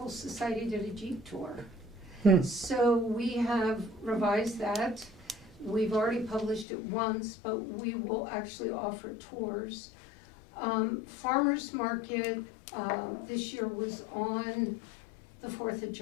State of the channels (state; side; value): drops out; right; at 6.7 s